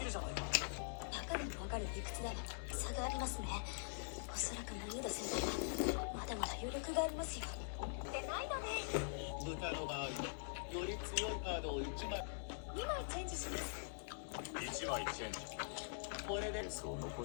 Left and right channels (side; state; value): right; silent; digital silence